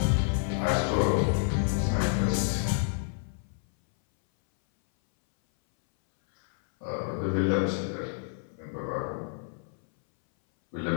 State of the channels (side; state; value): right; silent; 59 dB below the other